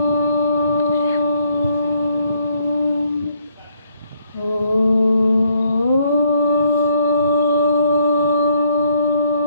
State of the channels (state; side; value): inverted; both; correlation -0.68